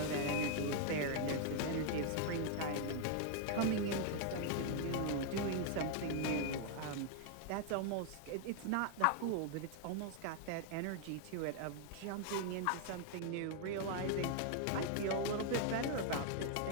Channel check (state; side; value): different; both; correlation 0.00